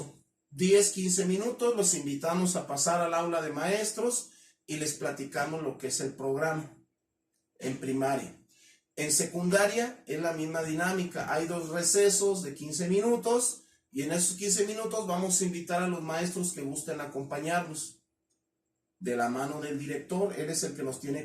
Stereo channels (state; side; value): identical; both; correlation 1.00